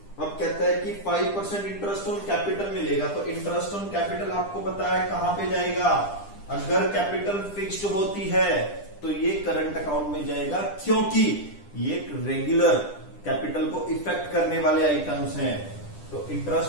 अब कहता है कि 5% इंटरेस्ट ऑन कैपिटल मिलेगा। तो इंटरेस्ट ऑन कैपिटल आपको पता है कहां पे जाएगा, अगर कैपिटल फिक्स्ड होती है तो ये करंट अकाउंट में जाएगा, क्योंकि ये रेगुलर कैपिटल को इफेक्ट करने वाले आइटम्स हैं। तो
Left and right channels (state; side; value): late; right; 10 ms